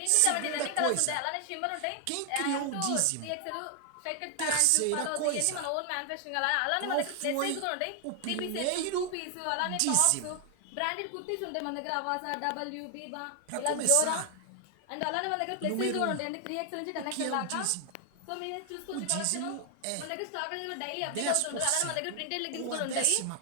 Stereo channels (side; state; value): both; different; correlation 0.00